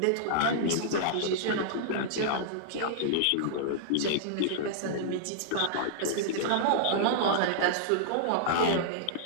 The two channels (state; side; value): different; both; correlation -0.02